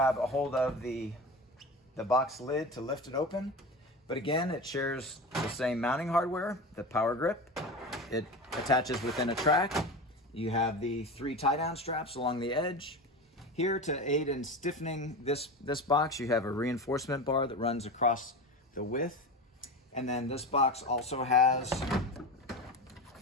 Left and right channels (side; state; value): both; normal; correlation 0.26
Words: a hold of the box lid to lift it open. But again, it shares the same mounting hardware, the Power Grip. It attaches within a track. You have the 3 tie-down straps along the edge. Here, to aid in stiffening this box, you have a reinforcement bar that runs across the width. And then this box also has